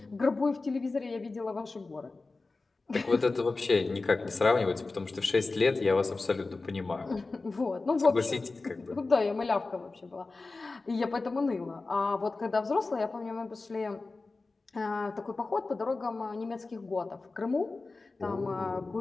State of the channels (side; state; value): right; quieter; 3.6 dB